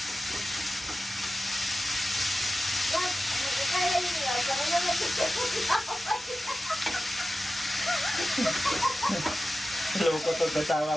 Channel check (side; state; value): both; normal; correlation 0.94